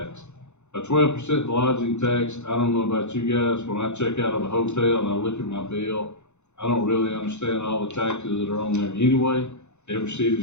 A 12% lodging tax. I don't know about you guys. When I check out of a hotel and I look at my bill, I don't really understand all the taxes that are on there anyway. Every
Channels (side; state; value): right; late; 0.83 ms